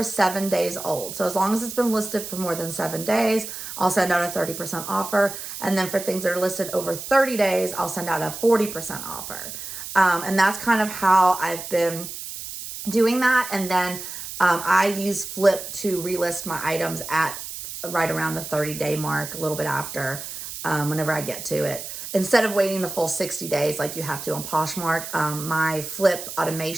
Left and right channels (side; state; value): right; noise; hiss, 9 dB below the sound